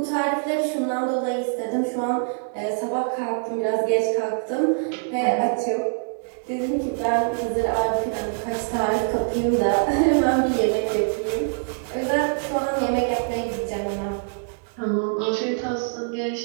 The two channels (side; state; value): left; silent; digital silence